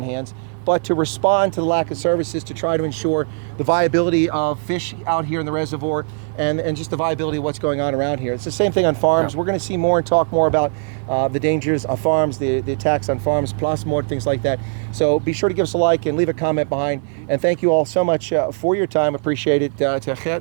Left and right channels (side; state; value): left; silent; digital silence